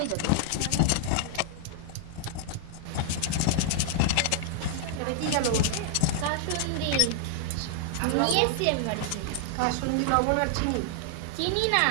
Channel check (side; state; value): both; different; correlation 0.00